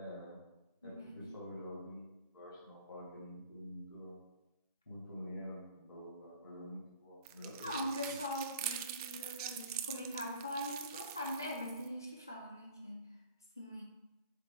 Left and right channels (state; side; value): inverted; both; correlation -0.48